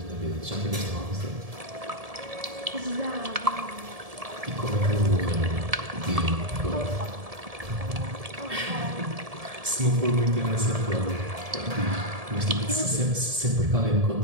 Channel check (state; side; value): late; left; 1.7 ms